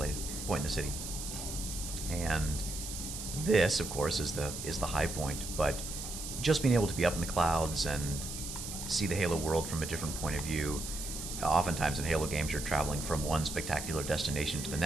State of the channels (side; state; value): right; noise; hiss, 7 dB below the sound